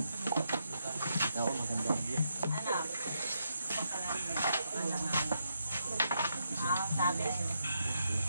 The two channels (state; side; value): inverted; both; correlation -0.81